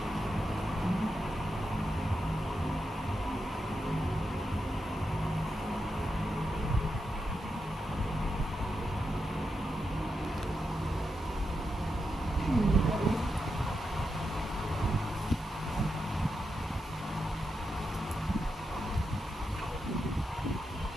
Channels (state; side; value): normal; both; correlation 0.86